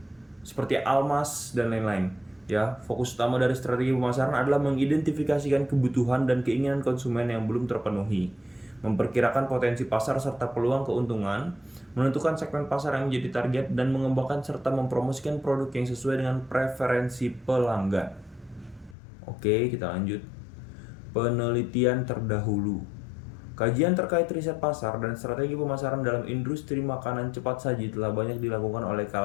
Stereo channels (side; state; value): right; drops out; at 18.9 s